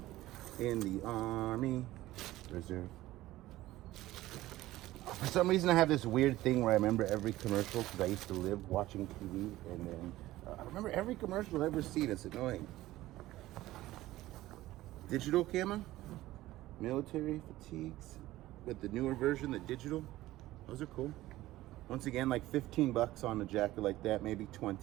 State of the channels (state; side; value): quieter; left; 16.3 dB